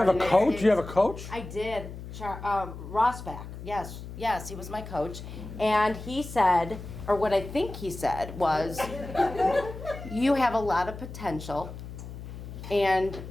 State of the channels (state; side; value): noise; left; hum, 11 dB below the sound